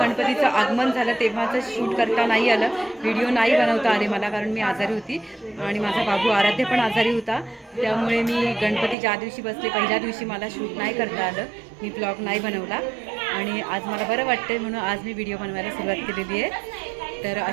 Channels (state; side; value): drops out; left; at 9.0 s